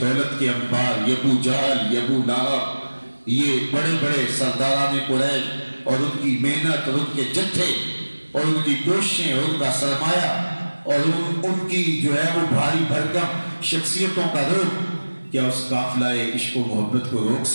دولت کے انبار، یبو جہل، یبو لہب، یہ بڑے بڑے سرداران قریش اور ان کی محنت اور ان کے جتھے اور ان کی کوششیں اور ان کا سرمایہ اور ان کی جو ہے وہ بھاری بھرکم شخصیتوں کا روپ، کیا اس قافلہ عشق و محبت کو روک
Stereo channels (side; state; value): both; inverted; correlation -1.00